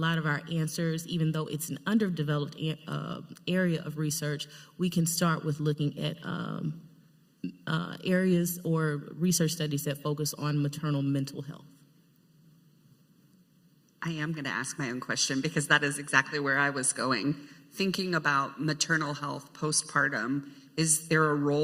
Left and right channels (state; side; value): identical; both; correlation 1.00